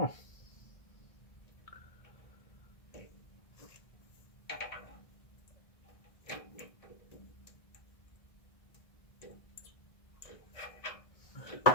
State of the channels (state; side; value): late; right; 1.6 ms